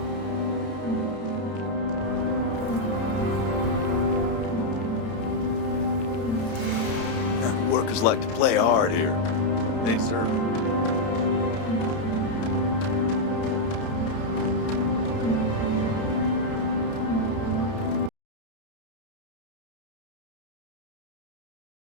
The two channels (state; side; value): late; right; 31 ms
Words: Workers like to play hard here. They deserve it.